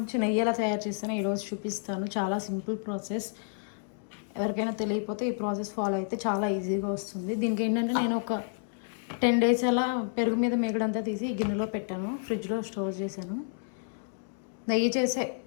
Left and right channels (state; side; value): silent; right; digital silence